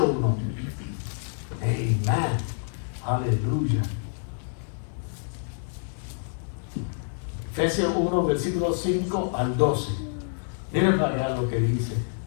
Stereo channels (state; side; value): silent; right; digital silence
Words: 1. Amén. Aleluya. Efesios 1, versículos 5 al 12. Miren para ver lo que dice.